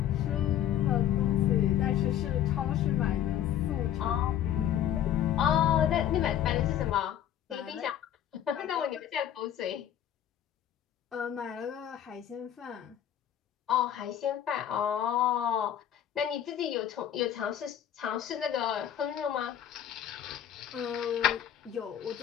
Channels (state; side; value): quieter; right; 10.5 dB